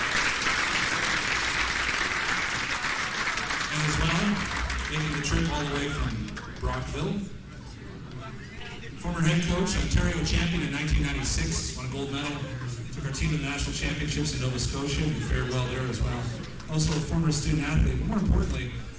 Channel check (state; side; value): identical; both; correlation 1.00